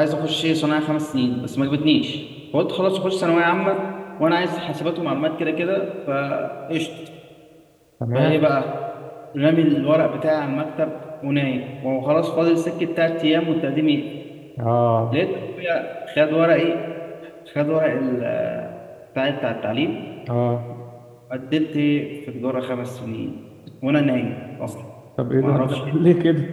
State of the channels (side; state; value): both; identical; correlation 1.00